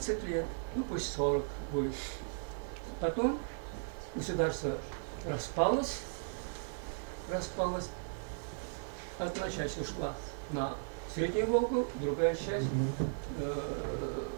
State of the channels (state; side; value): silent; left; digital silence